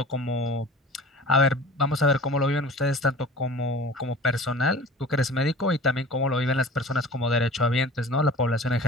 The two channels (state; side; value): normal; both; correlation 0.41